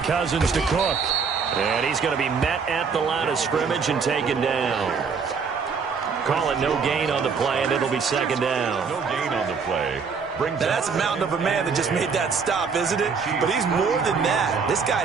Cousins to Cook. And he's going to be met at the line of scrimmage and taken down. Call it no gain on the play, and it'll be 2nd down. No gain on the play. Now that's a mountain of a man that just made that stop, isn't it? But he's more than that. This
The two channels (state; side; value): quieter; left; 5.6 dB